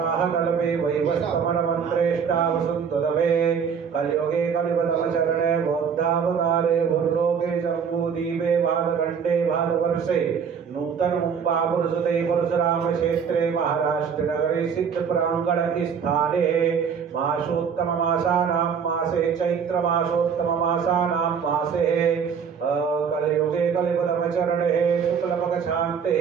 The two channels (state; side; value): quieter; left; 6.8 dB